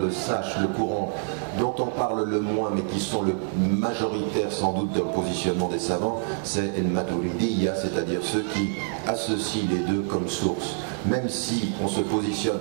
sache, le courant dont on parle le moins, mais qui sont le majoritaire sans doute d'un positionnement des savants, c'est el-Maturidiyya, c'est-à-dire ceux qui associent les deux comme source. Même si on se positionne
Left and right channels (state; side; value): silent; left; 57 dB below the other